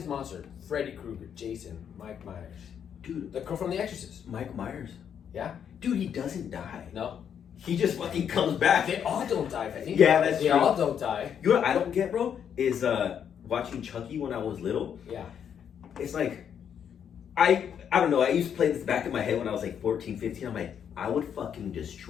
monster. Freddy Krueger, Jason, Mike Myers. Dude, The girl from The Exorcist. Mike Myers. Yeah? Dude, he doesn't die. No? He just fucking comes back. They all don't die, I think. Yeah, that's they true. all don't die. You know what I don't get, bro? Is watching Chucky when I was little. Yeah. It's like, I don't know. I used to play this back in my head when I was like 14, 15. I'm like, I would fucking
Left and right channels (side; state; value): right; quieter; 8.3 dB